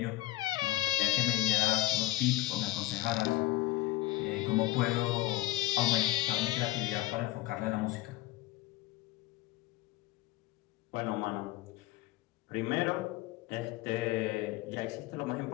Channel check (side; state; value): right; quieter; 17.5 dB